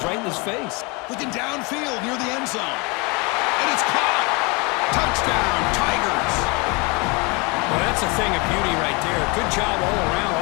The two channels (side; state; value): right; quieter; 28.6 dB